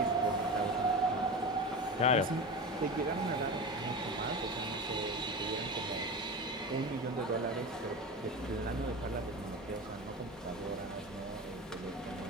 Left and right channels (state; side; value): normal; both; correlation 0.27